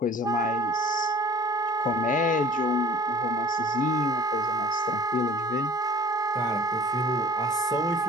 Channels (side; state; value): both; normal; correlation 0.46